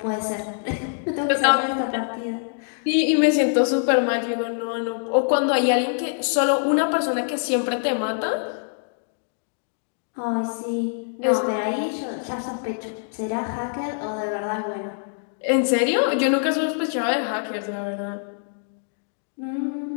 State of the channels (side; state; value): right; silent; digital silence